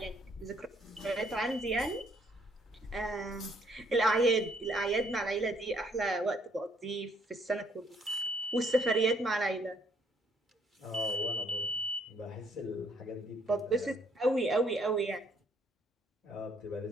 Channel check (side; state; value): both; normal; correlation 0.66